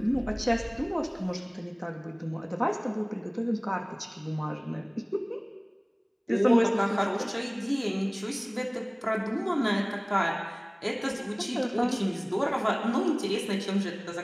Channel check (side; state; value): both; identical; correlation 1.00